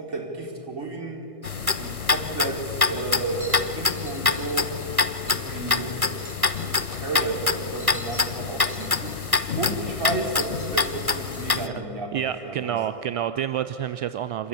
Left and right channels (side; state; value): left; late; 1.2 ms